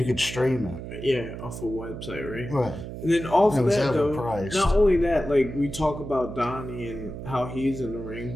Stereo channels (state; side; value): noise; right; hum, 9 dB below the sound